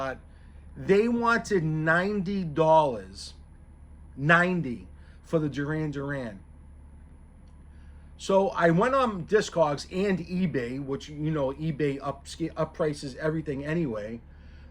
They wanted $90, 90 for the Duran Duran. So I went on Discogs and eBay, which eBay up prices everything anyway.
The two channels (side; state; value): both; identical; correlation 1.00